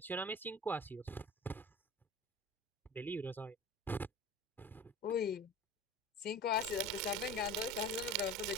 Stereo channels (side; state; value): both; normal; correlation 0.36